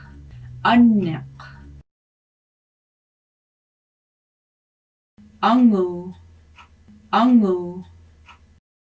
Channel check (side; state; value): both; identical; correlation 1.00